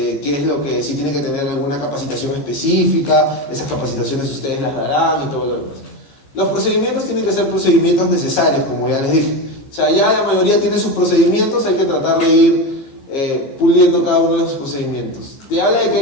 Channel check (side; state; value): right; late; 15 ms